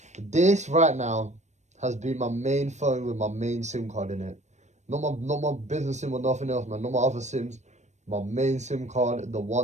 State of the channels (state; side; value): late; left; 0.34 ms